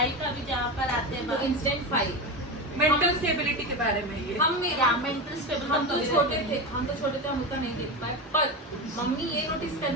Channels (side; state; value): both; normal; correlation 0.20